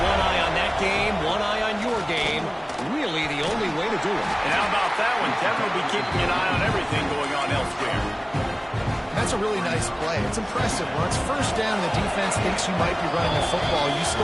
One eye on that game, one eye on your game. Really the only way to do it. And how about that one? Kevin will be keeping an eye on everything going on elsewhere. That's a really nice play. It's impressive. When it's first down and the defense thinks you might be running the football, you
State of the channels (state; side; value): identical; both; correlation 1.00